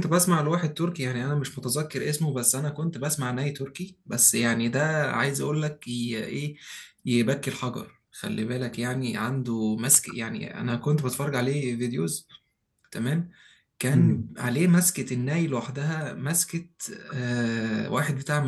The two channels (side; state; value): both; identical; correlation 1.00